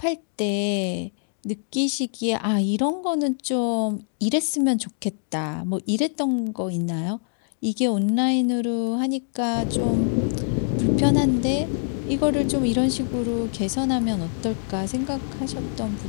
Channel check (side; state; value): right; silent; digital silence